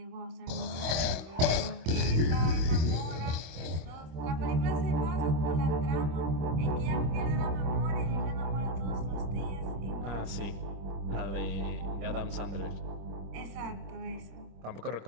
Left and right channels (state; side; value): late; left; 25 ms